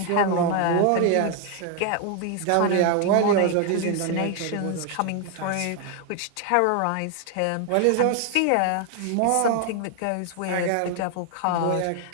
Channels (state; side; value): different; both; correlation 0.00